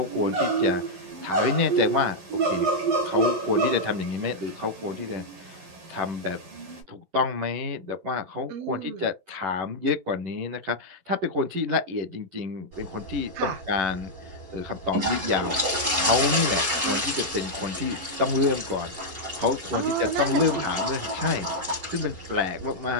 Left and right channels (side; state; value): left; late; 11 ms